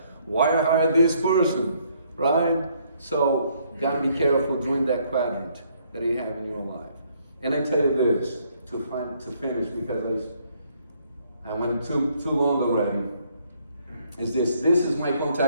Why I hired this person, right? So, gotta be careful during that quadrant that you have in your life. And I tell you this, to finish, because I went too long already, is this is my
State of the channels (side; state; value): both; inverted; correlation -0.68